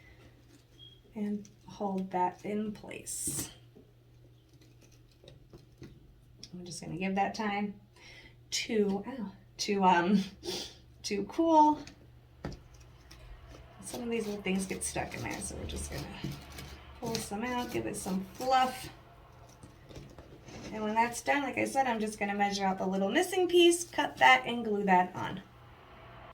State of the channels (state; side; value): identical; both; correlation 1.00